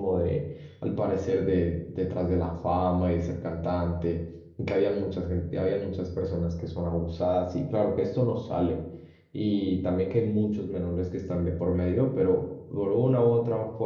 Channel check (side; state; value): both; identical; correlation 1.00